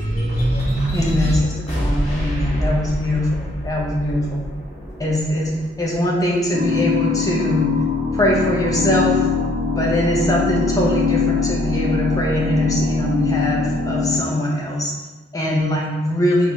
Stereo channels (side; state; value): both; normal; correlation 0.65